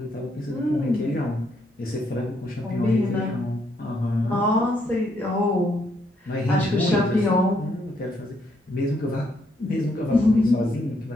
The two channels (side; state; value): both; normal; correlation 0.74